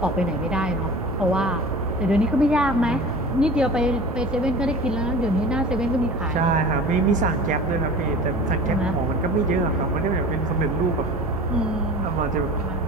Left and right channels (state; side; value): normal; both; correlation 0.38